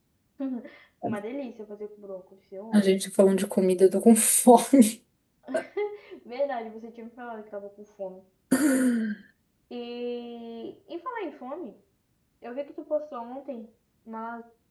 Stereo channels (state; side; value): identical; both; correlation 1.00